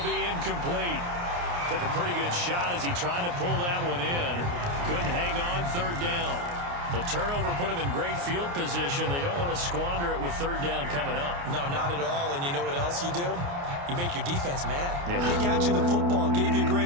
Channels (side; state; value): left; late; 29 ms